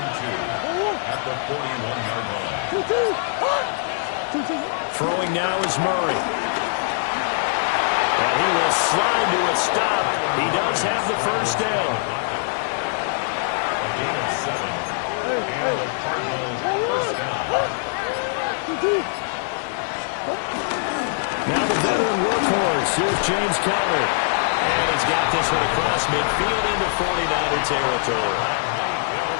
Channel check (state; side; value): silent; right; digital silence